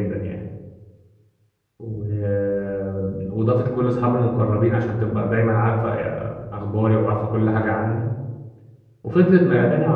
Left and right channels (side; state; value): both; identical; correlation 1.00